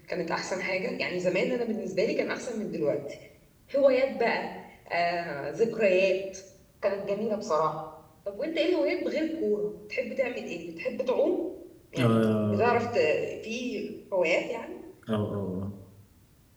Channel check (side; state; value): both; identical; correlation 1.00